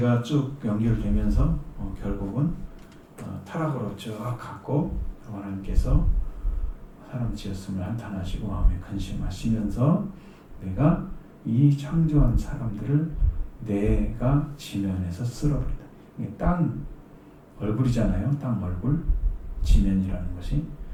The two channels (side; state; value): both; identical; correlation 1.00